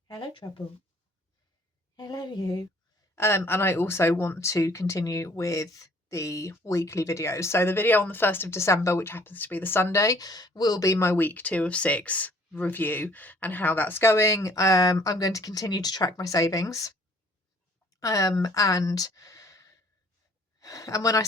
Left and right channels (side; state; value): both; normal; correlation 0.58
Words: hello trouble, hello you, and I also want to continue with the weekly videos. So the video on the 1st of December, which happens to be the Sunday, will be my week 2 of 6 review and how that's going. I'm going to continue to track my savings, and when I